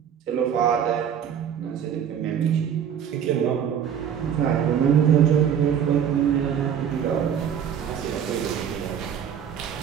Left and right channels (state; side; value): quieter; left; 8.6 dB